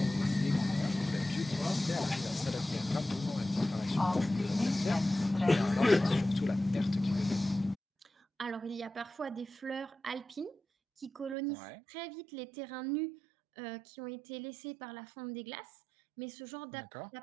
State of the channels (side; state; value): left; drops out; at 11.4 s